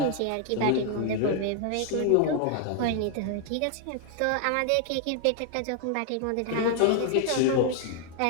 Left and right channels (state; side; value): different; both; correlation 0.00